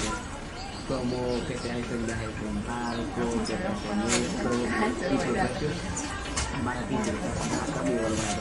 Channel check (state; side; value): identical; both; correlation 1.00